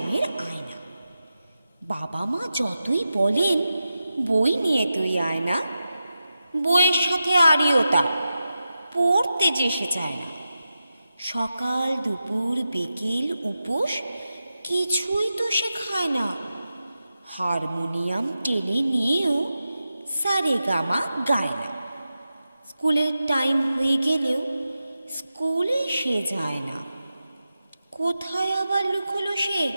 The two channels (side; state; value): both; inverted; correlation -0.91